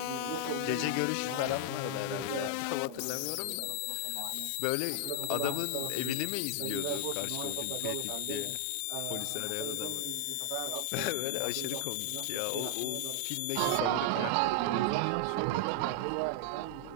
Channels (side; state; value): both; different; correlation 0.00